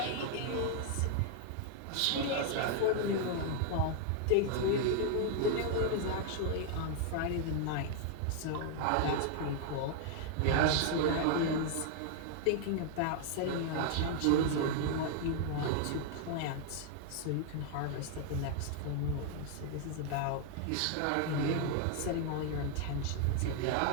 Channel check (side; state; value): both; different; correlation 0.00